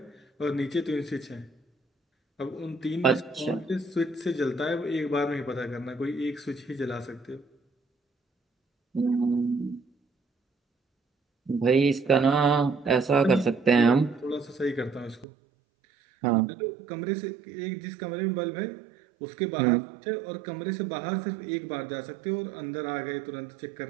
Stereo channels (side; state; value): left; drops out; at 15.2 s